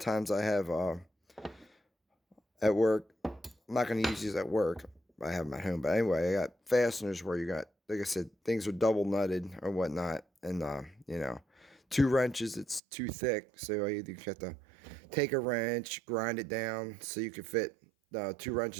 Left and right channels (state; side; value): drops out; left; at 12.8 s